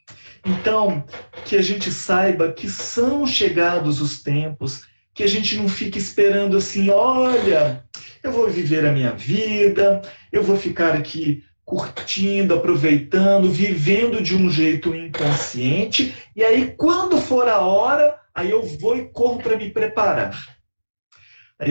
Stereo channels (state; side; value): inverted; both; correlation -1.00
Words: Então, que a gente saiba que são chegados os tempos, que a gente não fique esperando assim, olha, eu vou viver a minha vida, eu vou ficar aqui curtindo, aproveitando, vivendo de um jeito inconsciente, e aí quando for a hora, aí eu vou e corro para me preparar. Aí